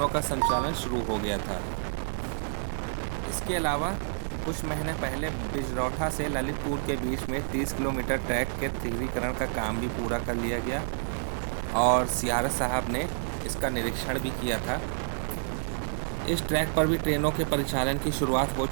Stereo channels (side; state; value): left; silent; 59 dB below the other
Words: का संचालन शुरू हो गया था। इसके अलावा कुछ महीने पहले बिजरौठा से ललितपुर के बीच में 30 किलोमीटर ट्रैक के तीव्रीकरण का काम भी पूरा कर लिया गया और CRS साहब ने इसका निरीक्षण भी किया था। इस ट्रैक पर भी ट्रेनों के परिचालन की शुरुआत हो